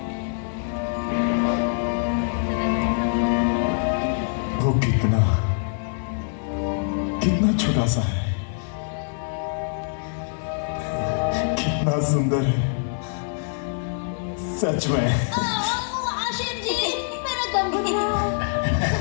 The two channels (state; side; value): silent; right; 55 dB below the other